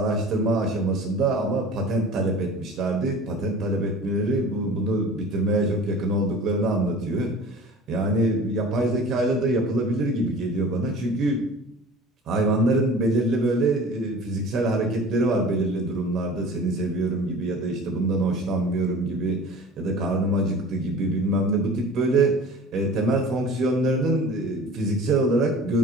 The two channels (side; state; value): both; normal; correlation 0.41